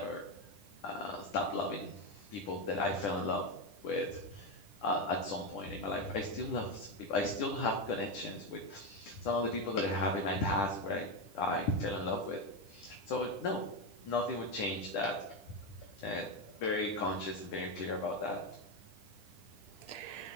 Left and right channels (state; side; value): late; right; 10 ms